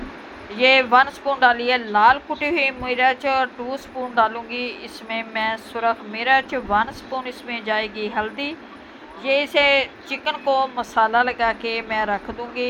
ये 1 स्पून डाली है लाल कुटी हुई मिर्च और 2 स्पून डालूँगी इसमें मैं सुरख मिर्च। 1 स्पून इसमें जाएगी हल्दी। ये इसे चिकन को मसाला लगा के मैं रख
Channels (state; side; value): identical; both; correlation 1.00